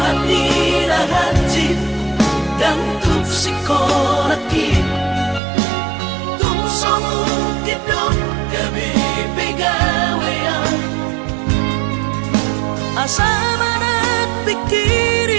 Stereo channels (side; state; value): left; drops out; at 5.4 s